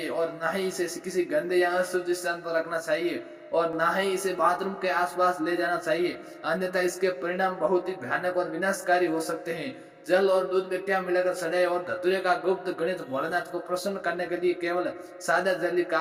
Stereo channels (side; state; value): both; identical; correlation 1.00